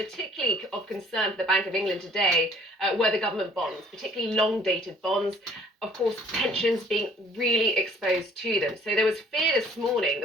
of concern for the Bank of England today were the government bonds, particularly long-dated bonds. Of course, pensions being really exposed to them. So there was fear this morning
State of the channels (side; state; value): both; normal; correlation 0.56